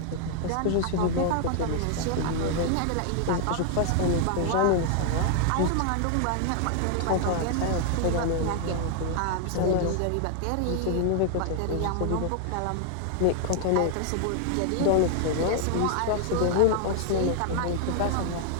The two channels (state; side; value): different; both; correlation 0.00